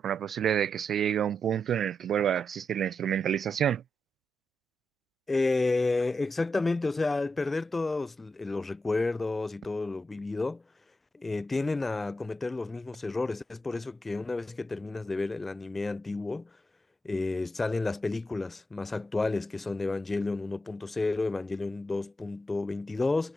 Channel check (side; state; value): both; normal; correlation 0.85